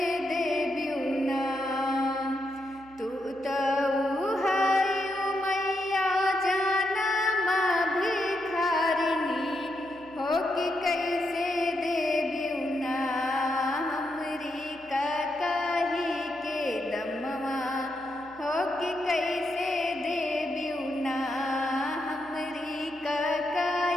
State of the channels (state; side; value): noise; right; hum, 25 dB below the sound